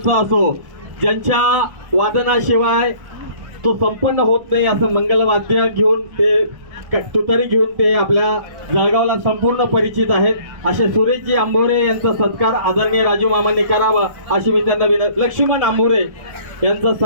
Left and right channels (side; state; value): left; late; 1.1 ms